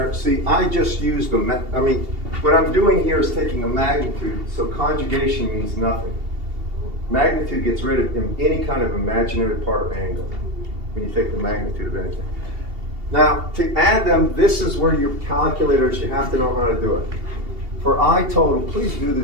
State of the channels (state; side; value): late; left; 2.8 ms